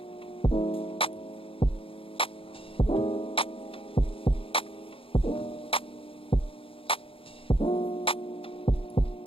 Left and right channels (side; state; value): right; late; 0.26 ms